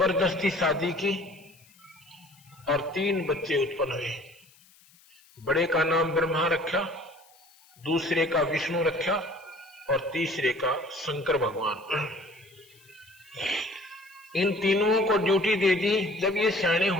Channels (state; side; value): noise; left; hiss, 28 dB below the sound